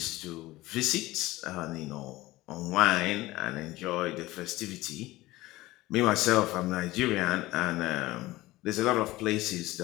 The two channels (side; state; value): right; quieter; 18.5 dB